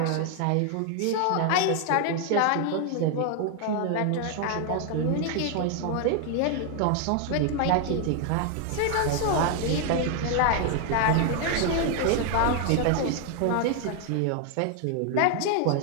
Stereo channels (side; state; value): both; different; correlation 0.00